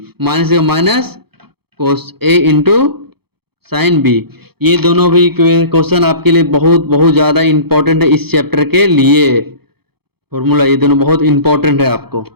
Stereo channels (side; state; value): left; late; 0.96 ms